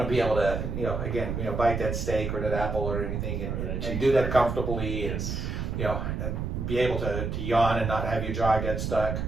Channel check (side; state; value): right; noise; rumble, 3 dB below the sound